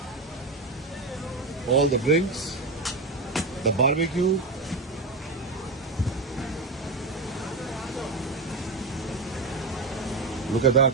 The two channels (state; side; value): quieter; left; 3.3 dB